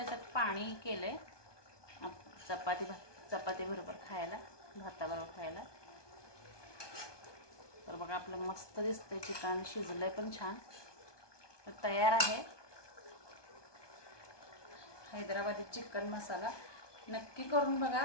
पाणी केलंय चपाती बरोबर खायला, भाताबरोबर खायला. तर बघा आपलं मस्त दिसतंय चिकन. शिजलंय पण छान. तर तयार आहे. हैदराबादी चिकन मसाला नक्की करून बघा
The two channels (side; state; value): right; late; 1.2 ms